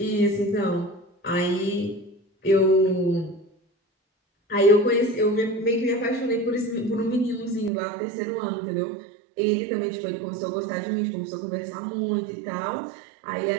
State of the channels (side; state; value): left; drops out; at 7.7 s